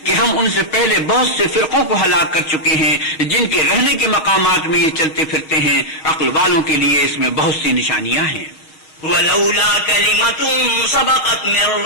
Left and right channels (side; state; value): right; late; 6.4 ms